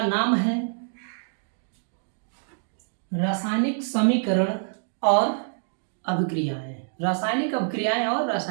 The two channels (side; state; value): left; silent; digital silence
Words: नाम है रासायनिक समीकरण और अभिक्रियाएं। रासायनिक अभिक्रियाएं और